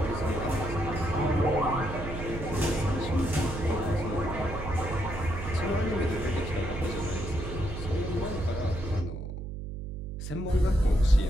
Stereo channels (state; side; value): noise; right; hum, 7 dB below the sound